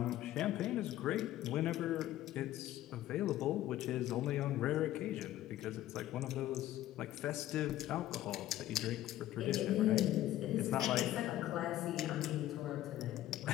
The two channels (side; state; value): right; quieter; 13.9 dB